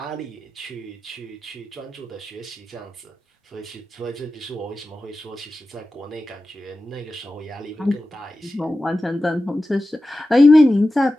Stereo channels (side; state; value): both; normal; correlation 0.93